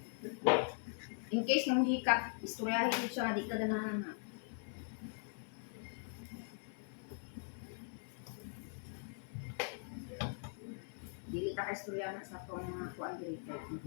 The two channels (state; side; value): silent; right; 50 dB below the other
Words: In case nang hikap istoryahin jud siya nga di ka ganahan na. Dili ta ka istorya na sa tong mga kuan diri kay